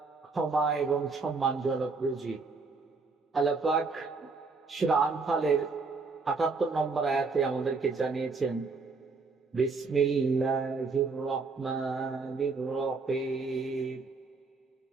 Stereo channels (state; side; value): quieter; left; 4.2 dB